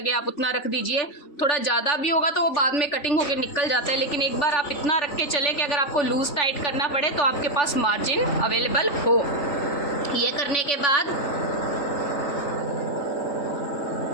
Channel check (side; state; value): right; late; 3.4 ms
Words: आप उतना रख दीजिए। थोड़ा ज़्यादा भी होगा तो वो बाद में कटिंग होके निकल जाता है, लेकिन एक बार आप इतना रख के चले कि अगर आपको लूज टाइट करना पड़े तो आपके पास मार्जिन अवेलेबल हो। ये करने के बाद